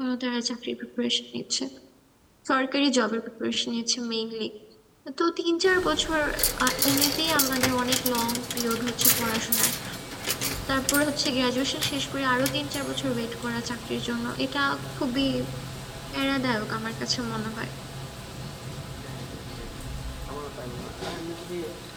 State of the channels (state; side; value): identical; both; correlation 1.00